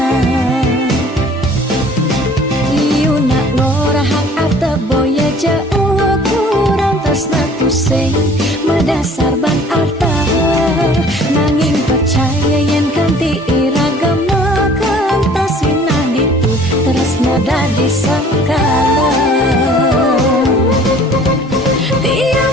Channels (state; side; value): normal; both; correlation 0.52